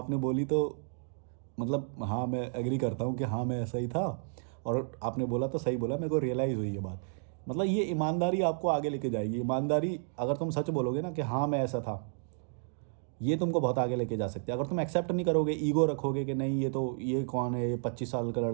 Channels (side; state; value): left; silent; 57 dB below the other